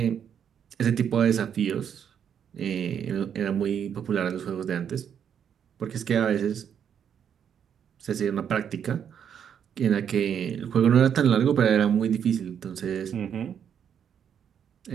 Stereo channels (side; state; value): left; quieter; 8.3 dB